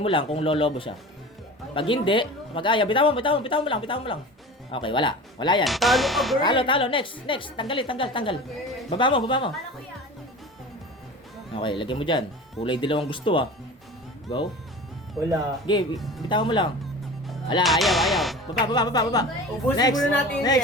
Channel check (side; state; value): both; normal; correlation 0.36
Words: mo lang kung lolobo siya. Pag hindi, mag-aya. Bitawan mo lang. Okay, wala. Wala yan. Talo ka, girl. Talo. Next. Tanggal. Baba mo. Okay, lagay mo dyan. Kulay dilaw ang gusto, ah. Go. Wala. Okay, bitawan mo lang. Wala, ayaw. Baba. Ubusin muna natin yung